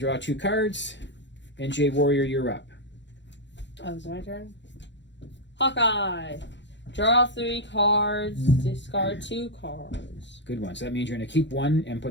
draw 2 cards. And JWarrior, you're up. Oh, it's my turn? Hawkeye. Draw 3 cards, discard 2 cards. Good one. So that means you're going to keep 1 and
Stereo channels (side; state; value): right; late; 0.52 ms